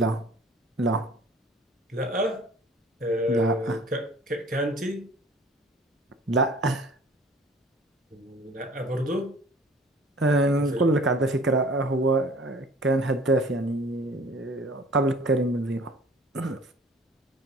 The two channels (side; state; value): both; normal; correlation 0.49